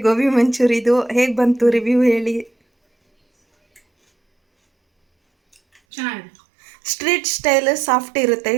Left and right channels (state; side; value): drops out; left; at 5.8 s